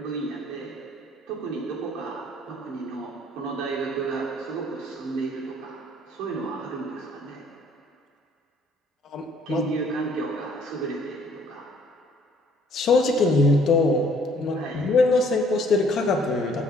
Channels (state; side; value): normal; both; correlation 0.60